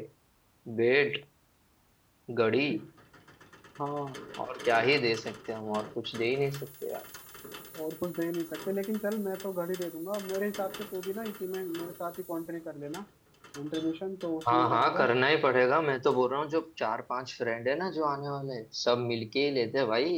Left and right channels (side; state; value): both; identical; correlation 1.00